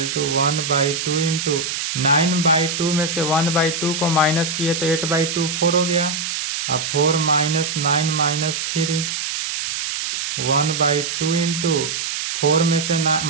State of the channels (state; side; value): noise; right; hiss, 3 dB below the sound